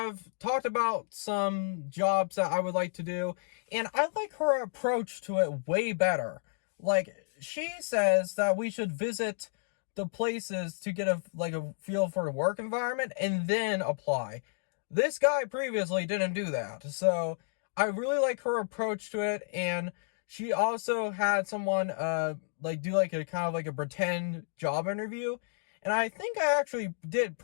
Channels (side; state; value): right; silent; digital silence